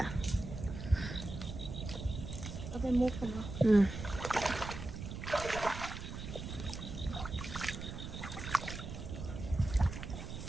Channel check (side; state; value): right; noise; rumble, 8 dB below the sound